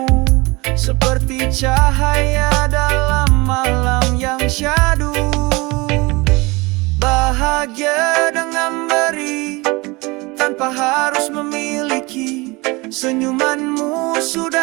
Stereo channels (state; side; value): quieter; left; 24.6 dB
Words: seperti cahaya dalam malam yang syahdu. Bahagia dengan beri tanpa harus memiliki. Senyumanmu